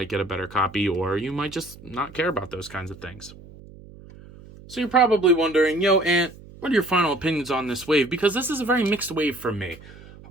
get a better copy, or you might just not care about those kinds of things. So you're probably wondering, yo, Ant, what are your final opinions on this wave? Because this is a very mixed wave for me.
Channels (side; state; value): right; noise; hum, 19 dB below the sound